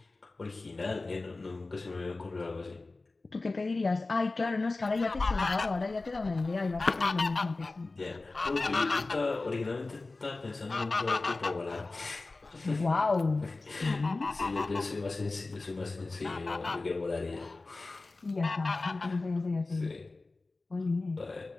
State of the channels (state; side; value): quieter; right; 3.4 dB